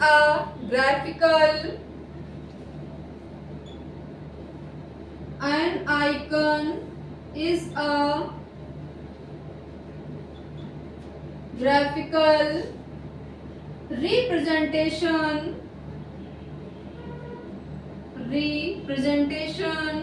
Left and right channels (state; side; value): identical; both; correlation 1.00